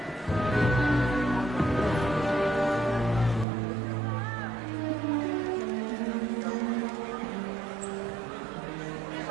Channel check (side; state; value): left; drops out; at 3.5 s